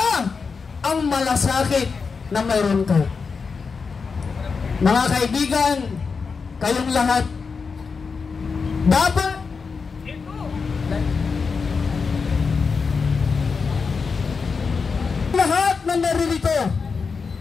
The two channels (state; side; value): quieter; right; 5.1 dB